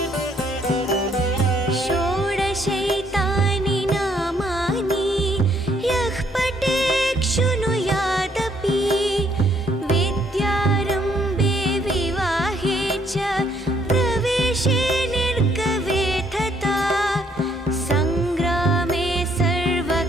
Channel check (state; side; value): normal; both; correlation 0.68